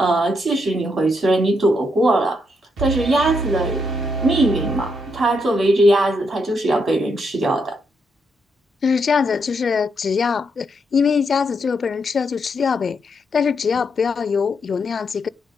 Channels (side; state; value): both; normal; correlation 0.79